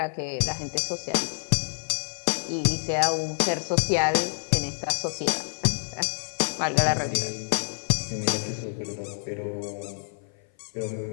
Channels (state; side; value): silent; right; 56 dB below the other